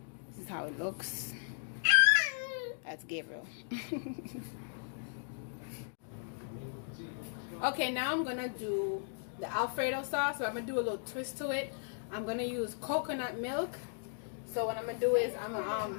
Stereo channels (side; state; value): right; silent; digital silence